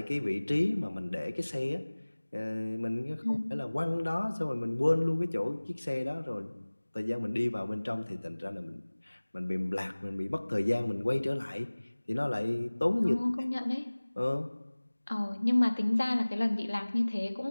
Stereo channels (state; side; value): inverted; both; correlation -1.00